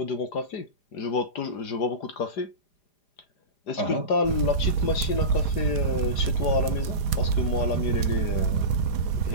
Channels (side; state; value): right; late; 4.9 ms